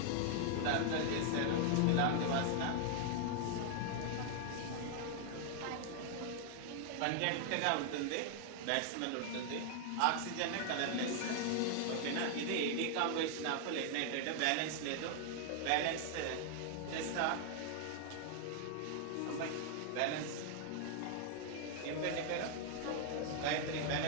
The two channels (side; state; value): both; different; correlation 0.00